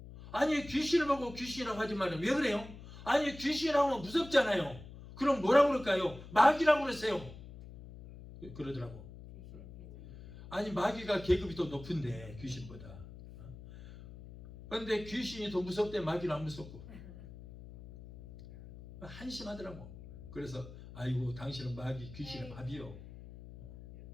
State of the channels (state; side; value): noise; left; hum, 15 dB below the sound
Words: 아니 귀신을 보고 귀신이라고 하지 말아요. 왜 그래요? 아니 귀신이라고 하면 무섭잖아요. 그럼 뭐라고 그럴까요? 마귀라고 그러세요. 그러더라고. 아니 마귀가 계급이 더 높은데 귀신보다. 그런데 귀신이 더 무섭대 마귀는 안 무섭고. 한심하더라고. 그래서 아이고 당신은 마귀 귀신의 밥이요.